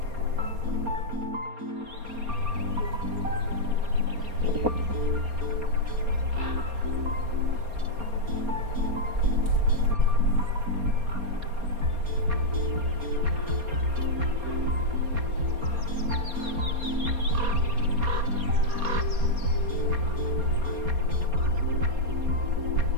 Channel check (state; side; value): late; left; 4.3 ms